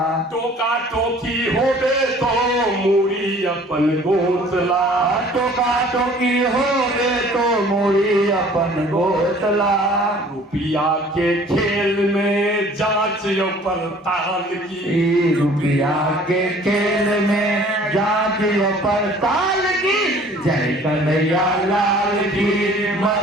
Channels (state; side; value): normal; both; correlation 0.51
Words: टोका टोकी होबे तो मूरी अपन गोतला टोका टोकी हो गे तो मोरी अपन गोतला रुपया के खेल में जांच यो पड़ताल की रुपया के खेल में जांच पड़ताल की जय कन्हैया लाल की